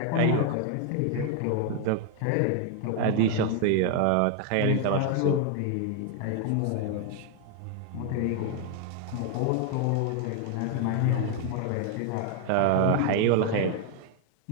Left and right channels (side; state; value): both; different; correlation 0.00